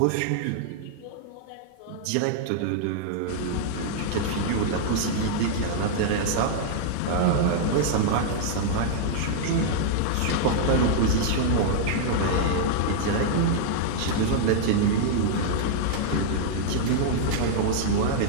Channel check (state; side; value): different; both; correlation -0.01